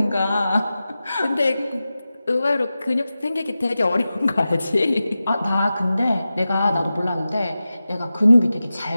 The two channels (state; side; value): inverted; both; correlation -0.94